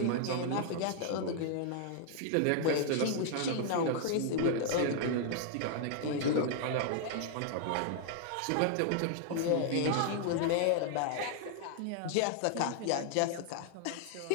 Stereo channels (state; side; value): different; both; correlation 0.00